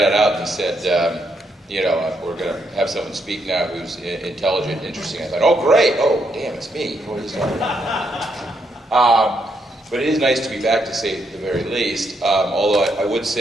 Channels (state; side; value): normal; both; correlation 0.77